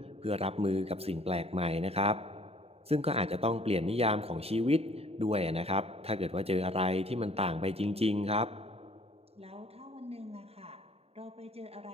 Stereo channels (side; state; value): left; late; 0.29 ms